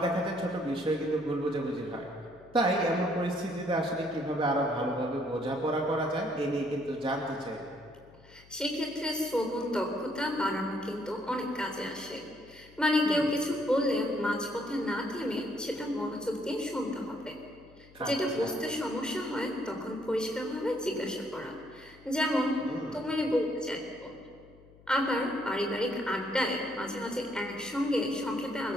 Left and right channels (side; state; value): left; noise; hum, 24 dB below the sound